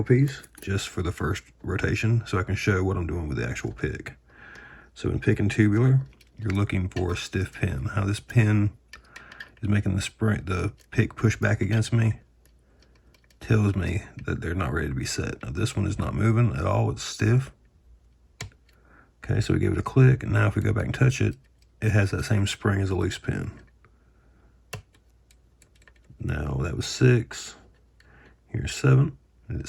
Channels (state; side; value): identical; both; correlation 1.00